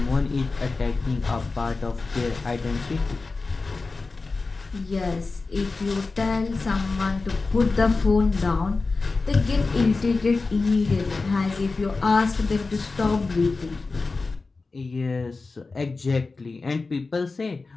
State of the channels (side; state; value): right; quieter; 3.9 dB